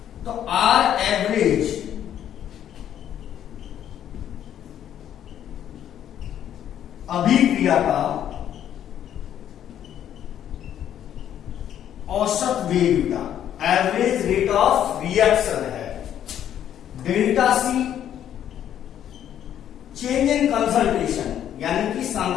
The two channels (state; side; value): quieter; right; 10.4 dB